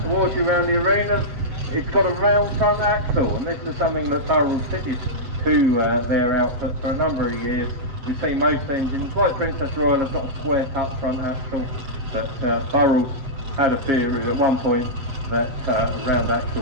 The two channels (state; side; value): late; left; 7.9 ms